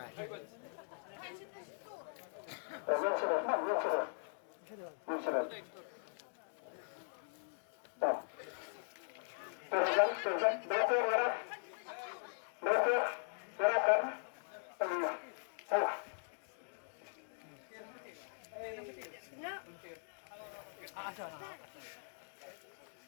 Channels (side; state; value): right; silent; digital silence